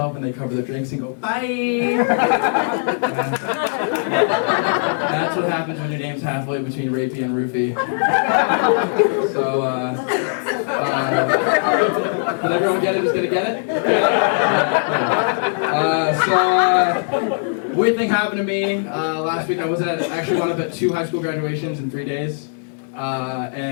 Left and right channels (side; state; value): right; silent; 66 dB below the other